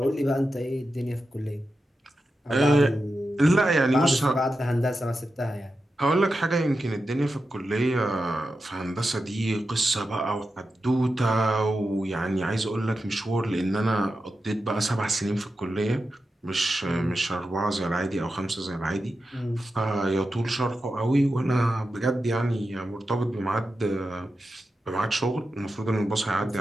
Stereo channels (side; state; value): both; normal; correlation 0.90